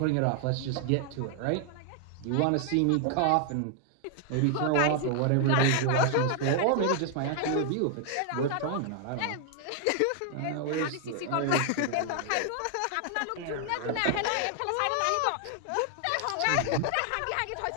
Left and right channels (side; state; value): both; different; correlation 0.00